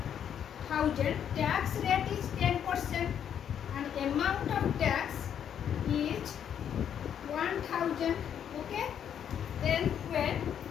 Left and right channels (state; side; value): quieter; right; 8.9 dB